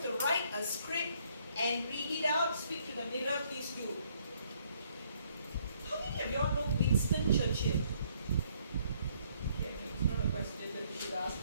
to write a script and read it out, speak to the mirror, please do. How many of y'all know Winston Churchill? Okay, it's not a question that you should ask.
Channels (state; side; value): inverted; both; correlation -0.67